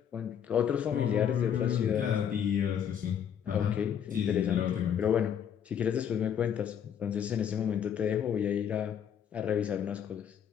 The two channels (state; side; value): quieter; right; 8.6 dB